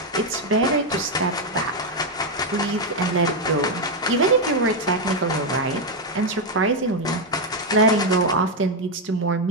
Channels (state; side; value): normal; both; correlation 0.03